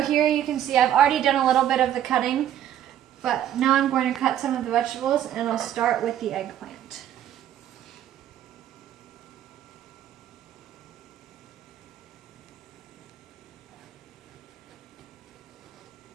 here you can see I've already done a little bit of the cutting, but now I'm going to cut some of the vegetables, and I'll start with the eggplant.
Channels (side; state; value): left; quieter; 11.1 dB